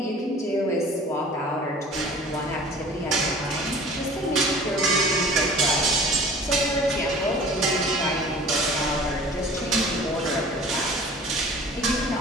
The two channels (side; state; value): both; normal; correlation 0.45